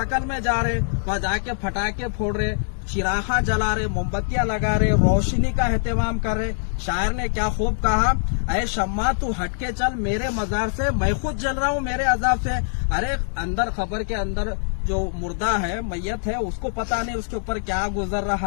में जा रहे, वहाँ जाके फटाके फोड़ रहे, चिराहा जला रहे, मोमबत्तियां लगा रहे, रोशनी का एहतमाम कर रहे। शायर ने क्या खूब कहा, ऐ शम्मा तू हटके चल मेरे मजार से, मैं खुद जल रहा हूँ मेरे अजाब से। अरे अंदर खबर के अंदर जो मुर्दा है, मैयत है, उसको पता नहीं उसके ऊपर क्या गुजर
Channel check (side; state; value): right; silent; digital silence